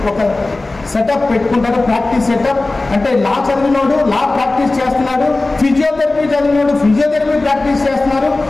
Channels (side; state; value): right; quieter; 3.1 dB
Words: ఒక సెటప్ పెట్టుకుంటారు, ప్రాక్టీస్ సెటప్. అంటే లా చదివినోడు లా ప్రాక్టీస్ చేస్తున్నాడు, ఫిజియోథెరపీ చదివినోడు ఫిజియోథెరపీ ప్రాక్టీస్ చేస్తున్నారు,